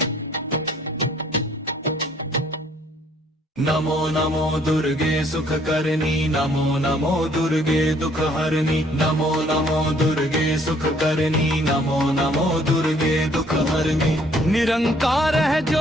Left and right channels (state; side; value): normal; both; correlation 0.62